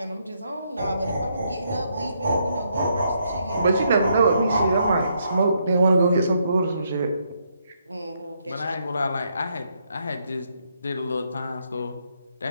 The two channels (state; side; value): inverted; both; correlation -0.75